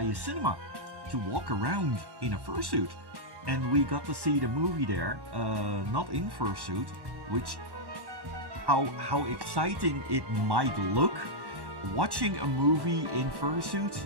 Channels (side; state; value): left; late; 1.1 ms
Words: cinema to walk around in a fursuit, and we got to see the movie there, not in fursuit, which how exciting it might look. Watching a movie in fursuit